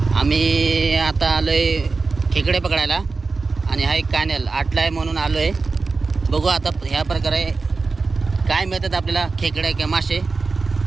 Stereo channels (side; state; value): left; quieter; 4.1 dB